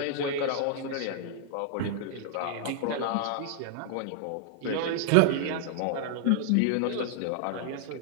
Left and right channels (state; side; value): different; both; correlation -0.01